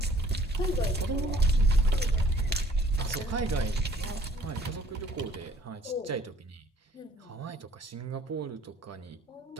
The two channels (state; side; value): normal; both; correlation 0.59